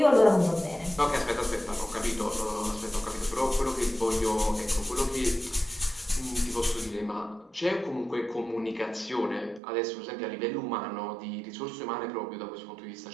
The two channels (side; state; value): left; drops out; at 9.6 s